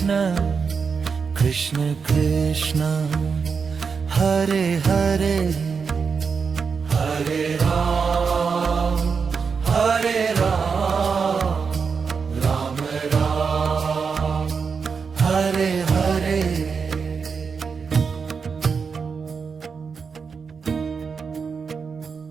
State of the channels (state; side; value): quieter; left; 5.6 dB